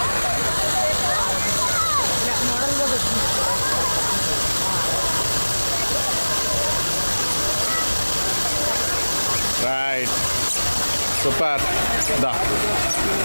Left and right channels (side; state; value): both; inverted; correlation -1.00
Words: Right, super. దా